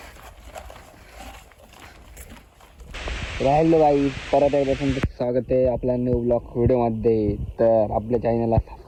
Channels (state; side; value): identical; both; correlation 1.00